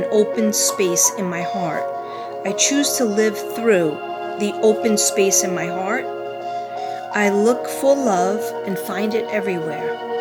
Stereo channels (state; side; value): identical; both; correlation 1.00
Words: open space in my heart. I choose to live through the open space in my heart. I look for love and find it everywhere.